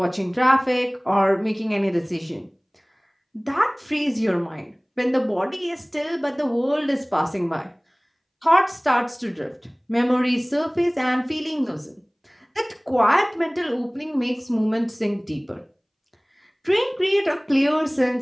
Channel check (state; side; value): identical; both; correlation 1.00